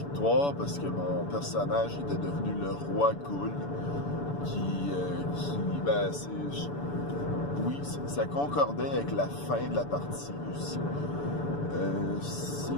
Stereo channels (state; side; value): late; right; 6.9 ms